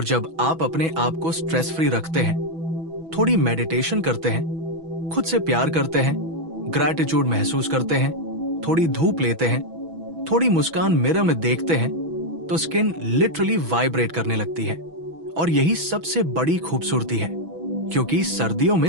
जब आप अपने आप को स्ट्रेस फ्री रखते हैं, थोड़ी मेडिटेशन करते हैं, खुद से प्यार करते हैं, ग्रैटिट्यूड महसूस करते हैं, थोड़ी धूप लेते हैं, थोड़ी मुस्कान मिरर में देखते हैं, तो स्किन लिटरली वाइब्रेट करने लगती है। और यही सबसे बड़ी खूबसूरती है, क्योंकि सर्दियों में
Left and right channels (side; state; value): left; late; 6.1 ms